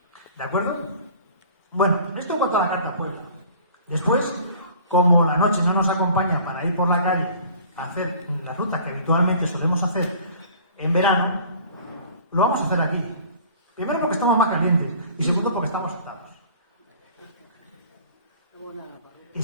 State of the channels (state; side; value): inverted; both; correlation -0.49